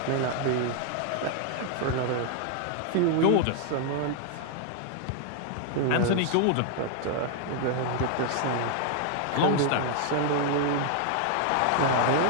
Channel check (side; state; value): both; different; correlation 0.00